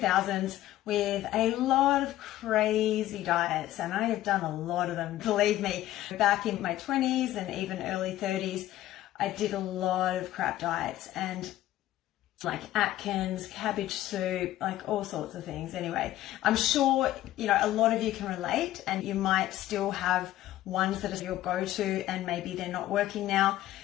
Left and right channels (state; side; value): quieter; right; 14.4 dB